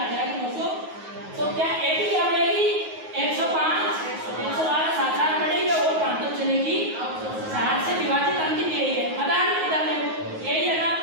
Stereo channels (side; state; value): left; late; 9.4 ms